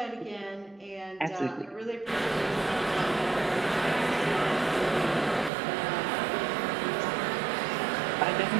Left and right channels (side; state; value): left; drops out; at 5.5 s